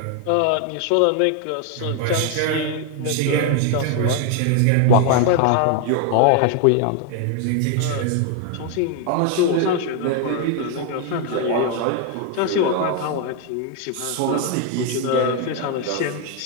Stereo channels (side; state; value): both; different; correlation 0.00